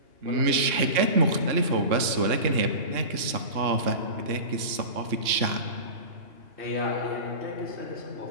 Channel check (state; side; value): late; left; 2.8 ms